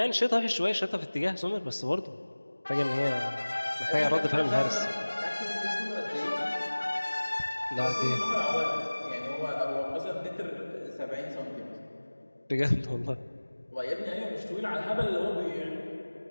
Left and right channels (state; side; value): inverted; both; correlation -1.00